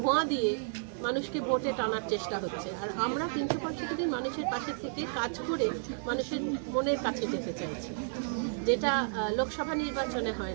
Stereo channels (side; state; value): left; silent; digital silence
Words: দিয়ে মানুষকে ভোটে টানার চেষ্টা হচ্ছে, আর আমরা 365 দিন মানুষের পাশে থেকে কাজ করে মানুষের মনের কাছে যেতে চাইছি, যেটা লোকসভা নির্বাচনে